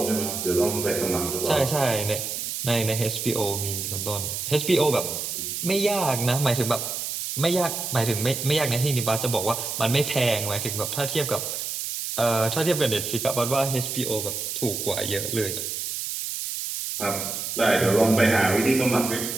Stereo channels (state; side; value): noise; right; hiss, 4 dB below the sound